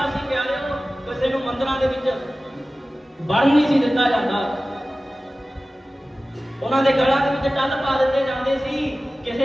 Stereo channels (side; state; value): both; normal; correlation 0.96